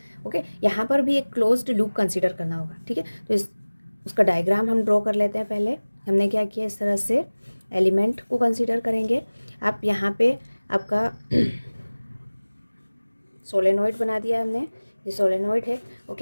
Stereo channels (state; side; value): inverted; both; correlation -1.00